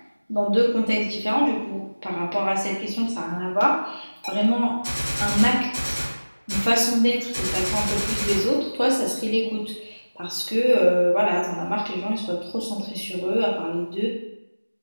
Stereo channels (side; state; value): both; inverted; correlation -1.00